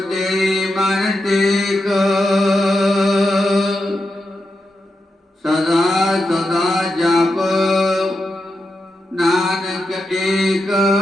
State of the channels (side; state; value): both; normal; correlation 0.87